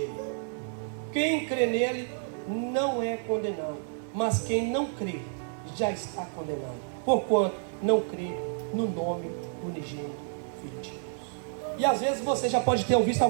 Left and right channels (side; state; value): left; silent; digital silence